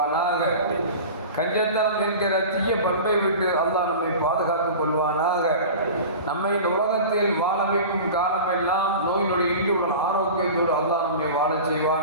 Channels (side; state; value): both; inverted; correlation -0.35